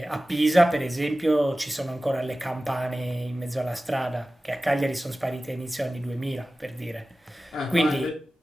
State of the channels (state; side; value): normal; both; correlation 0.96